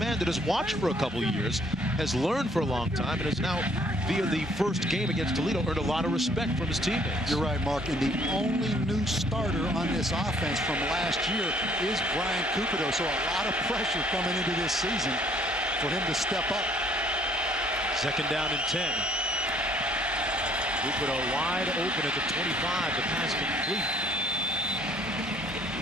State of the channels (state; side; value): normal; both; correlation 0.61